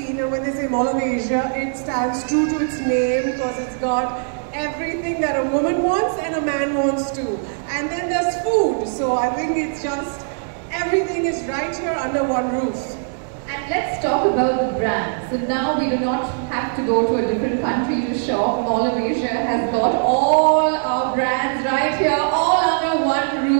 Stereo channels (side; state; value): left; silent; digital silence